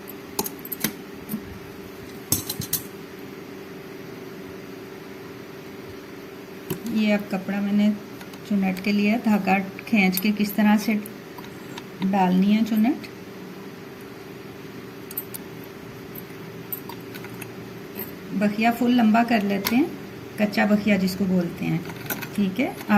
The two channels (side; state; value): both; identical; correlation 1.00